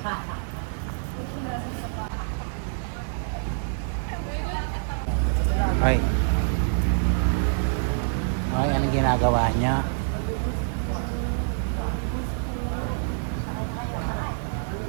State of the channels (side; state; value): left; silent; digital silence